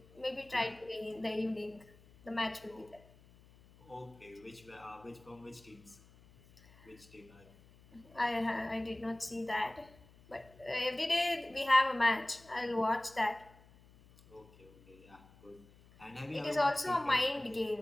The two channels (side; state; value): left; noise; hum, 25 dB below the sound